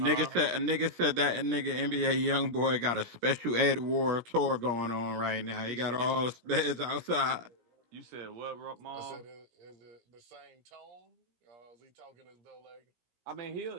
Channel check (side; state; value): left; late; 17 ms